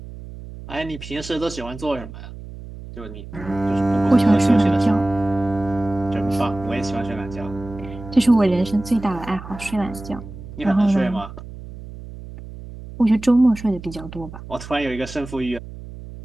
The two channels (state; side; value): noise; right; hum, 13 dB below the sound